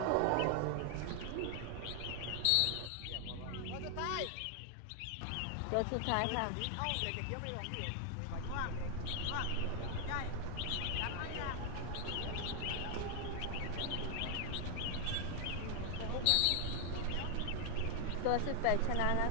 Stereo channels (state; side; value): different; both; correlation 0.00